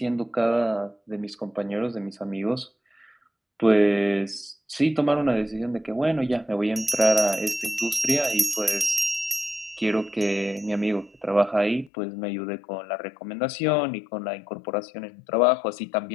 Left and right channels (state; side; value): drops out; right; at 11.9 s